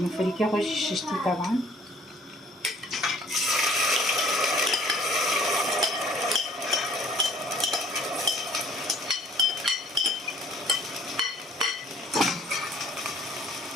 فریکه خوشی ششتی طبعا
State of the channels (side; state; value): both; normal; correlation 0.55